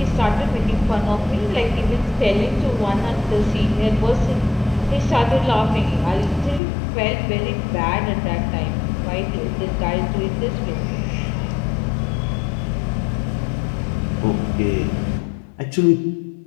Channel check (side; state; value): right; drops out; at 6.6 s